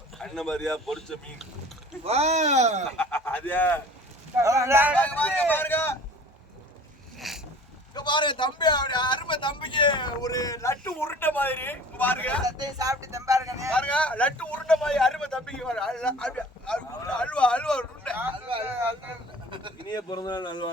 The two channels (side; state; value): both; normal; correlation 0.45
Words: அண்ணன் மாதிரியா பொரிச்ச மீன் அதே பாருங்க தம்பி அருமை தம்பிக்கு ஒரு லட்டு உருண்டை மாதிரி பாருங்க. சாப்பிட்டு தம்பாருங்க பாருங்க. லட்டு உருண்டை மாதிரி அருமை தம்பிக்கு அல்வா உருண்டை. இனிய பிறந்தநாள்